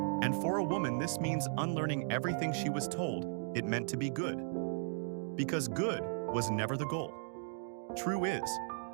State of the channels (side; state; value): left; silent; digital silence